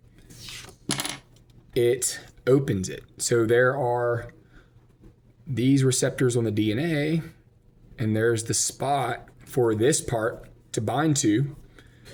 It opens it. So there are these receptors on the DNA, and there's the spot for this part to bind to.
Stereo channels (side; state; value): both; identical; correlation 1.00